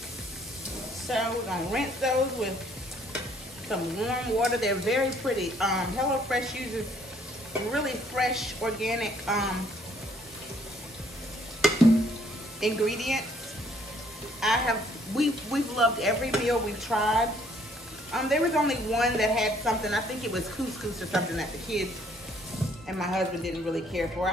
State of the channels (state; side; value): normal; both; correlation 0.63